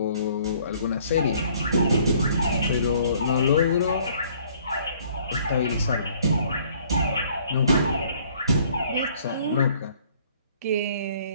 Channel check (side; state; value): both; inverted; correlation -0.59